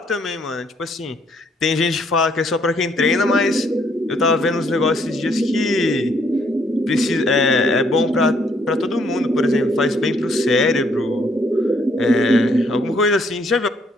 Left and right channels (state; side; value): normal; both; correlation 0.68